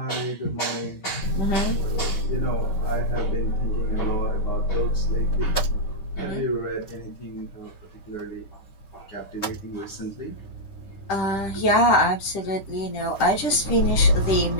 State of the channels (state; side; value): late; right; 10 ms